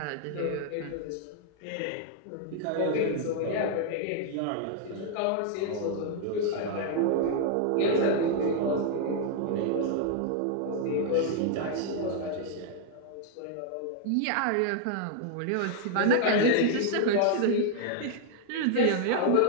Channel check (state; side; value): different; both; correlation 0.00